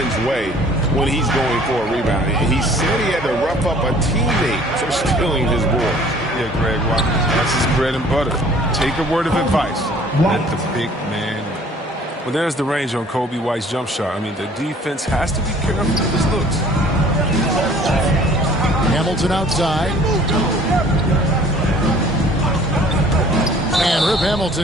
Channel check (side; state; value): both; normal; correlation 0.53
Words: way when he's going for a rebound. He said he had to rough up a teammate for stealing his ball. Yeah, Greg, that's his bread and butter. Take a word of advice. Let the big man. Well, there's the range on Coby White's jump shot. I mean, the defense has to be careful with his looks. Hamilton outside. And Rip